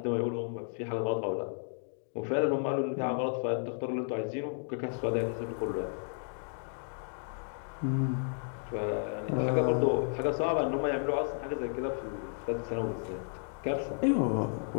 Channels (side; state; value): right; silent; 56 dB below the other